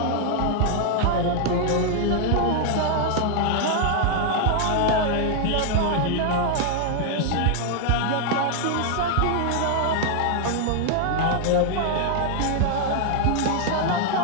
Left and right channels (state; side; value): different; both; correlation 0.00